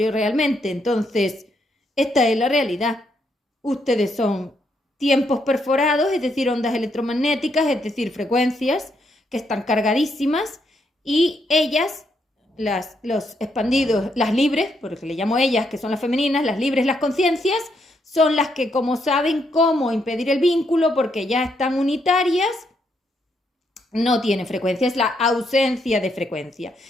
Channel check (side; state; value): both; normal; correlation 0.76